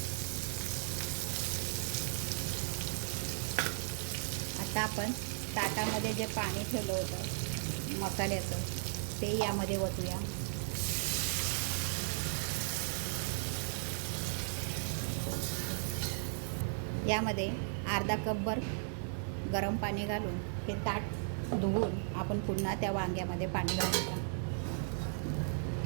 आता आपण ताटामध्ये जे पाणी ठेवलं होतं मसाल्याचं ते यामध्ये ओतूया. यामध्ये अर्धा कपभर गरम पाणी घालून हे ताट धुवून आपण पुन्हा त्या वांग्यामध्ये पाणी घालूया.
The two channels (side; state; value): left; silent; digital silence